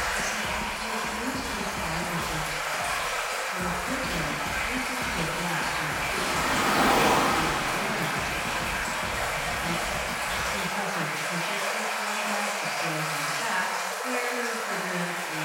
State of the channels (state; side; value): identical; both; correlation 1.00